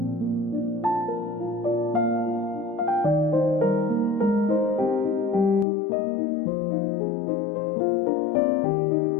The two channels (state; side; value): drops out; right; at 5.7 s